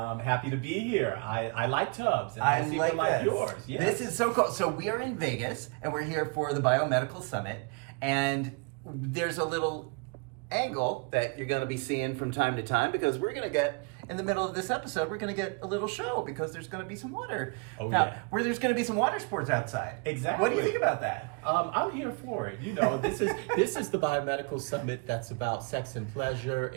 happy to be here. I like tubs. And I seem to like yours. Yes. This is so cool. So we are in Vegas and we're here for the Biomedical Summit, and there's a little angle that you're going to be seeing from time to time, because we're going to get, in the middle of this episode, we're going to get a little show because there's going to be some water. Where there's going to be some water sports outside. Exactly. What do you think about that? I'm here for it. You know, this is the Biomedical Summit that's about sex and pleasure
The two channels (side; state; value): left; quieter; 32.3 dB